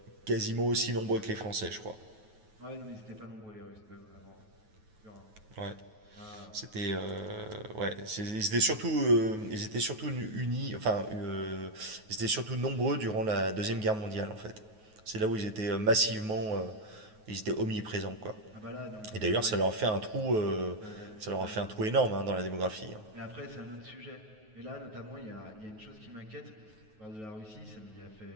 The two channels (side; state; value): left; late; 9.4 ms